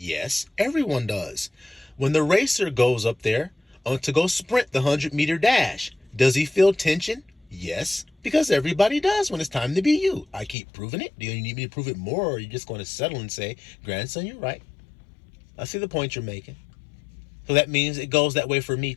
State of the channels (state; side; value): drops out; right; at 10.6 s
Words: everyone does. When the racer goes up there to go sprint the 100-meter dash, does he feel tension? Yes, because everybody does when it's time to be you. I keep proving it. Do you need me to prove it more, or are you just going to settle and say, grandson, you're right? I see the point you're making. So that means it goes that way for me